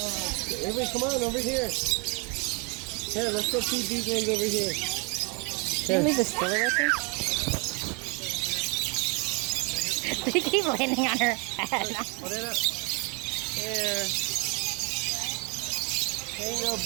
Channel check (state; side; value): quieter; left; 32.1 dB